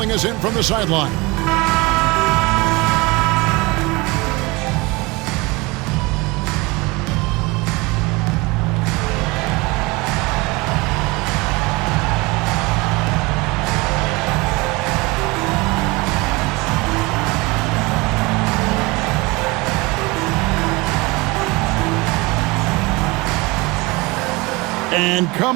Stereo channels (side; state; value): left; quieter; 24.3 dB